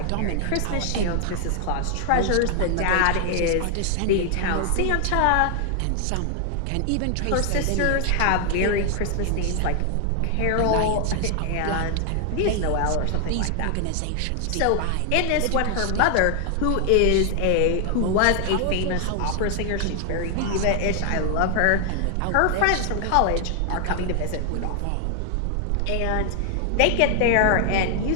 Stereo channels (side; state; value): both; different; correlation 0.00